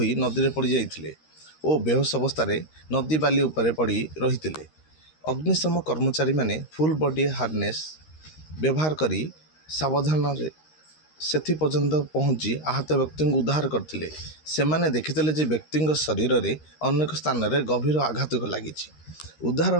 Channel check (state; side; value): late; right; 13 ms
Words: नदी में पड़ जाइथिले और बेहोश अवस्था नदी बाली उपरे पड़ी रही। अग्निशम कर्मचारी माने फुल बॉडी हार्नेस व्यवहार करी सावधान सेथि पर्यंत पहुंची आहत व्यक्ति को उद्धार करथिले। सेमाने देखिथिले जे व्यक्ति शरीर रे अनेक स्थान रे गभीर आघात लगी। उद्धार